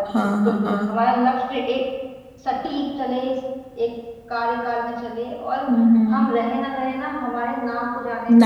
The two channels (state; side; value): identical; both; correlation 1.00